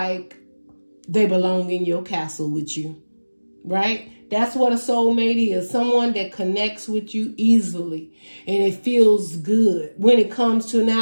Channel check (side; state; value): both; inverted; correlation -1.00